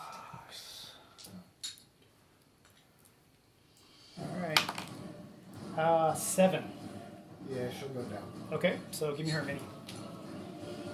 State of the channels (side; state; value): both; identical; correlation 1.00